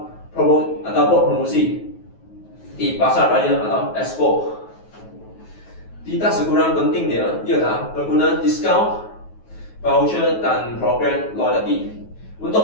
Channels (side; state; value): right; late; 9.3 ms